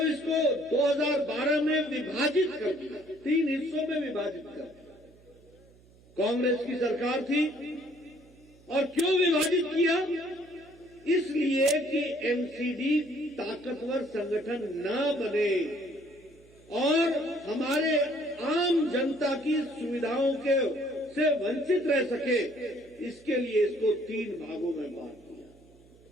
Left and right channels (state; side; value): noise; right; hum, 27 dB below the sound